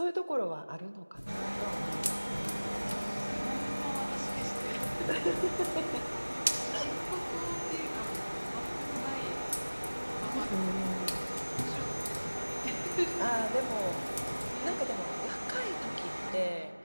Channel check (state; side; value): inverted; both; correlation -1.00